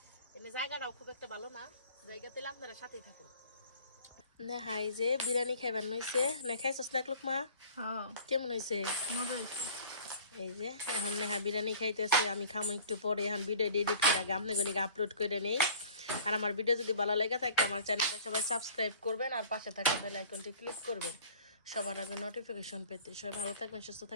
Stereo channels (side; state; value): both; inverted; correlation -0.47